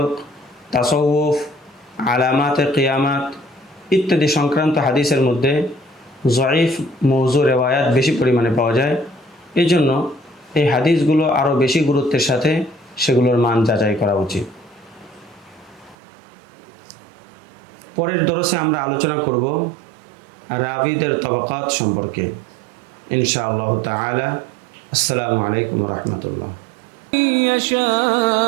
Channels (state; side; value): drops out; left; at 16.0 s